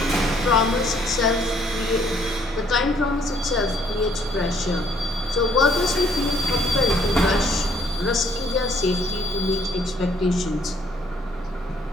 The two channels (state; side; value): normal; both; correlation 0.64